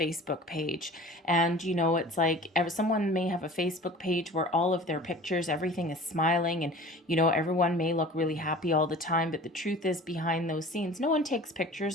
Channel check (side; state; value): both; normal; correlation 0.42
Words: page. And, it's like someone may have a Facebook page where all of their pictures, everything is smiling and, everyone may look really happy all the time. But the truth is behind those scenes, no one takes pictures